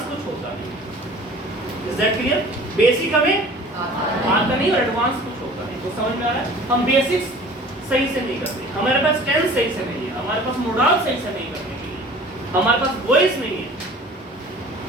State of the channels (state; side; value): normal; both; correlation 0.45